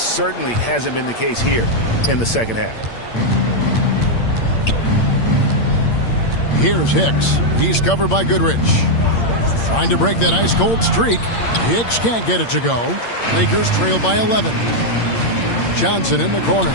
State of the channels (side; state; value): right; late; 8.7 ms